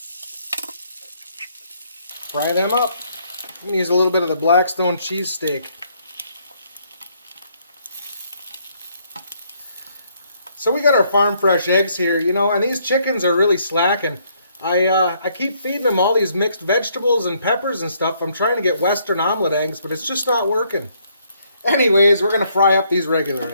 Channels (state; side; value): inverted; both; correlation -0.69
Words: Fry them up. I'm going to use a little bit of the Blackstone cheese steak. So we got our farm fresh eggs here, you know, and these chickens are really slacking. I keep feeding them all these mixed vegetables and peppers and stuff. I'm trying to get Western omelet eggs, but it's just not working. Anyways, we're going to fry up these regular